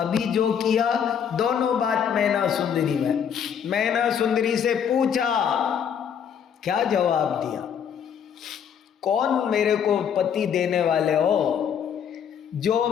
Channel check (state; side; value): quieter; right; 8.0 dB